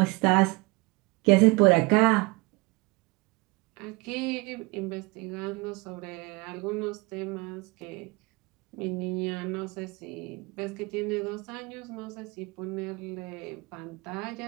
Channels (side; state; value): left; quieter; 25.5 dB